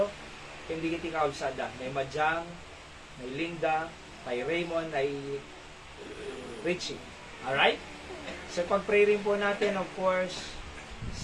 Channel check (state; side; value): identical; both; correlation 1.00